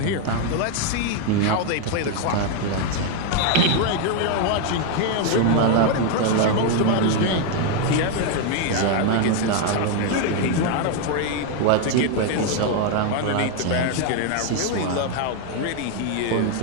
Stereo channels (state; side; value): different; both; correlation 0.01